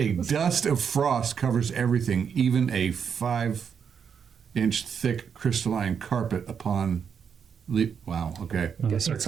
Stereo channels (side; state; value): left; quieter; 7.0 dB